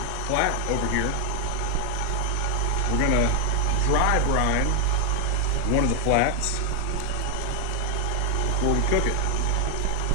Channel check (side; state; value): both; different; correlation 0.00